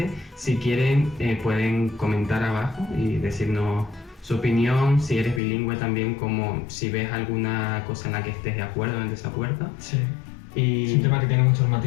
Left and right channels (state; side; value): drops out; right; at 5.4 s